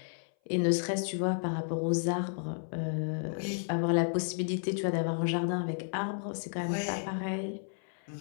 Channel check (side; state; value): right; silent; 56 dB below the other